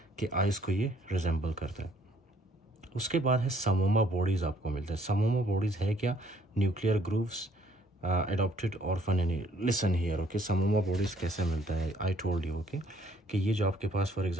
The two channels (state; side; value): normal; both; correlation 0.64